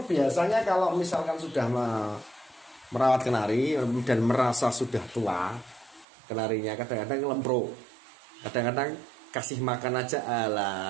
biasanya kalau misalkan sudah merawat kenari dan merasa sudah tua, kenarinya kadang-kadang lempro, kadang-kadang kasih makan aja,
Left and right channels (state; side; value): drops out; left; at 6.1 s